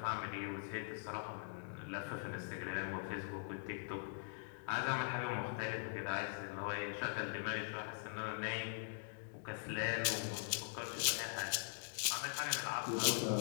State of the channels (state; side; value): silent; right; digital silence